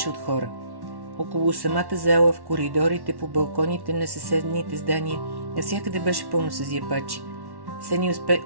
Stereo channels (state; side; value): late; left; 1.1 ms